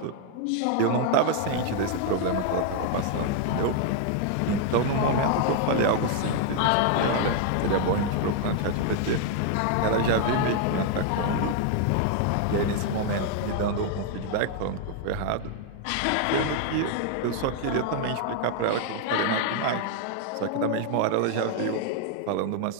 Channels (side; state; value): both; different; correlation 0.00